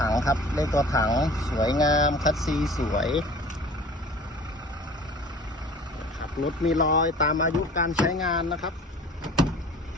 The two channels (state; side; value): normal; both; correlation 0.45